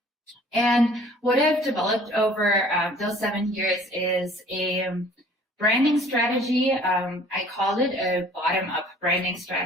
And what I've developed over those 7 years is a branding strategy. I call it a bottom-up branding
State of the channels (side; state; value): both; normal; correlation 0.52